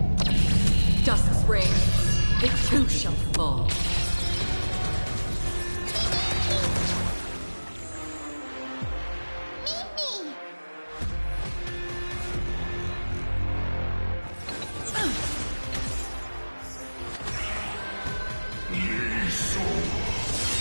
Dusk's reign, it too shall fall.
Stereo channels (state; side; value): inverted; both; correlation -1.00